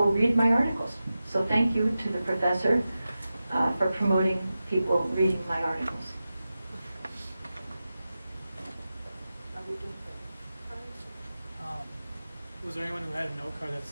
read my articles. So thank you to the professor for promoting people reading my articles. Was there anyone who had a note card?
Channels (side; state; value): both; inverted; correlation -0.93